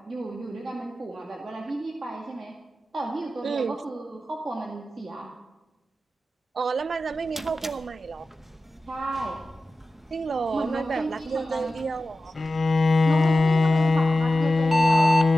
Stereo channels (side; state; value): both; normal; correlation 0.94